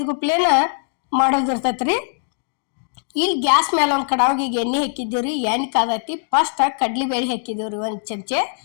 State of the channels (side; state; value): right; silent; digital silence